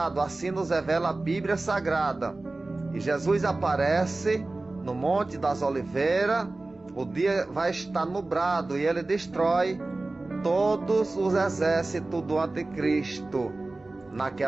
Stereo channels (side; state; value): left; quieter; 3.1 dB